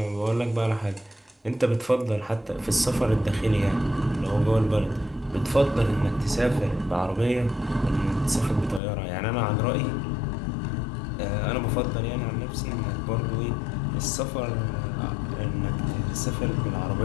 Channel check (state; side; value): drops out; right; at 8.8 s